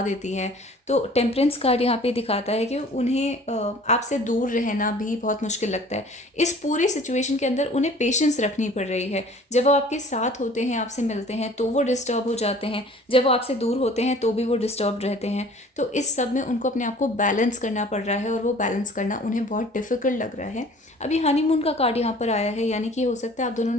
देती है। तो टेम्परेंस कार्ड यहाँ पे दिखाता है कि उन्हें आपसे दूर रहना भी बहुत मुश्किल लगता है। इस पूरी सिचुएशन के अंदर उन्हें पेशेंस रखनी पड़ रही है। जब वो आपके साथ होते हैं, आपसे मिलते हैं, तो वो डिस्टर्ब हो जाते हैं। जब वो आपसे दूर होते हैं तो भी वो डिस्टर्ब रहते हैं। तो इस सब में उनको अपने आप को बैलेंस करना पड़ रहा है और वो बैलेंस करना उन्हें बहुत डिफ़िकल्ट लग रहा है। अभी हनीमून का कार्ड यहाँ पर आया है, यानी कि हो सकता है आप दोनों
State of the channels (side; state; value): both; normal; correlation 0.49